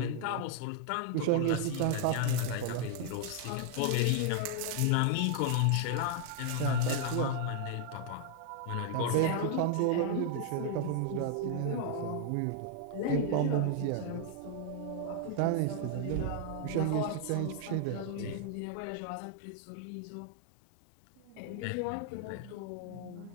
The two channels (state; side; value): different; both; correlation 0.00